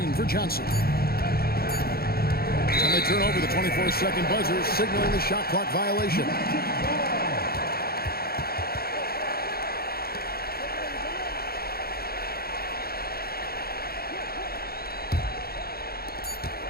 for Johnson. And they turn over the 24-second buzzer, signaling the shot clock violation.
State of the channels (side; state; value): right; late; 0.44 ms